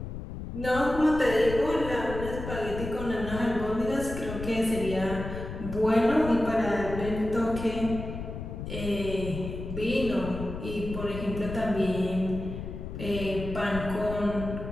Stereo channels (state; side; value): noise; left; rumble, 8 dB below the sound